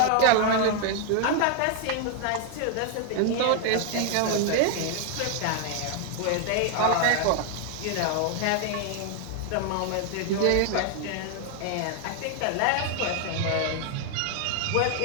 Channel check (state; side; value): different; both; correlation 0.00